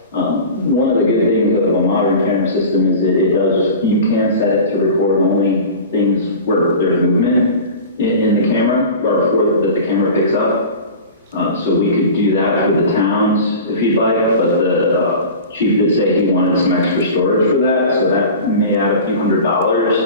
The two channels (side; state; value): both; inverted; correlation -0.36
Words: One of the good things of a modern camera system is that you can set it to record only things where there's movement in the camera, or that the camera picks up. So we could do that for the towns if you'd like, but the chief did say he wanted some extra storage for that, so that may add a few